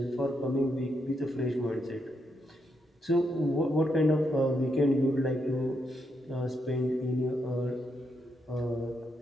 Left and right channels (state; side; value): normal; both; correlation 0.80